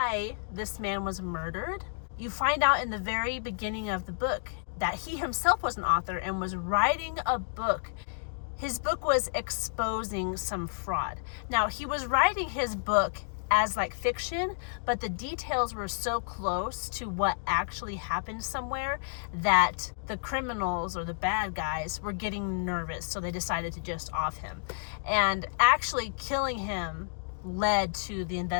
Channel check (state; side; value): silent; right; digital silence